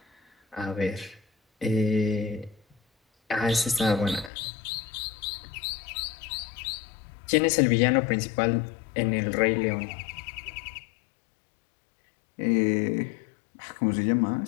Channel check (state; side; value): drops out; right; at 4.3 s